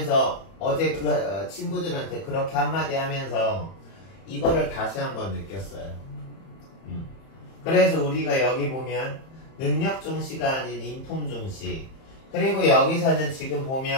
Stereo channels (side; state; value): right; late; 31 ms